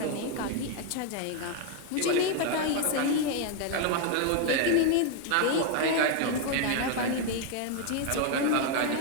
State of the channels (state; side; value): different; both; correlation 0.01